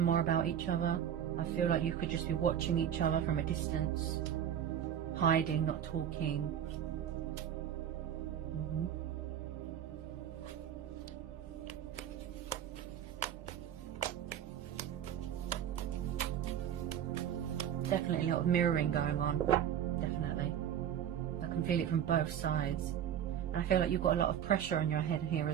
more about each other. I feel like you could just be watching each other from a distance, hiding, not talking. Definitely a lot of mirroring going on. Definitely. I can feel it from both sides. And I feel like you've got a lot of pressure on your head here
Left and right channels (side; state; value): left; quieter; 9.7 dB